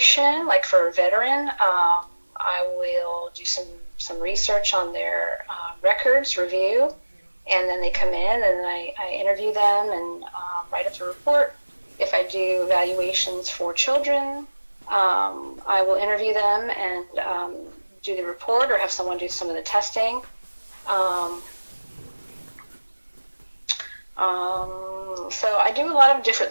like for a veteran, I will do some research on their records, review, and then they come in and I interview them and write up the report. If I do evaluations for children, I will interview them and do the report or have someone do some of the testing. So I do a lot of different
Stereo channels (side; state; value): both; inverted; correlation -1.00